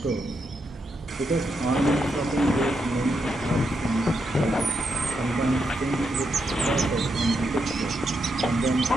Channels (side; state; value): both; normal; correlation 0.82